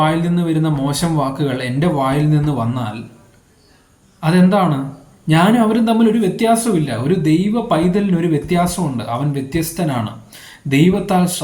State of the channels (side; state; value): both; identical; correlation 1.00